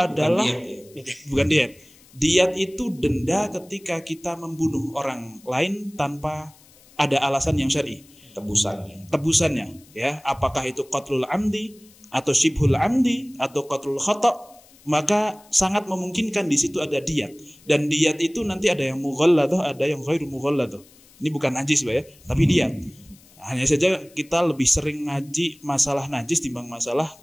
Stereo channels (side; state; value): left; noise; hiss, 27 dB below the sound